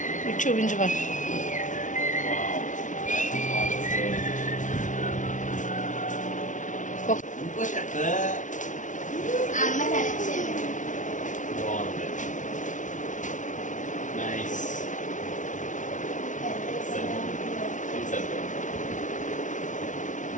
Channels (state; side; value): late; right; 0.37 ms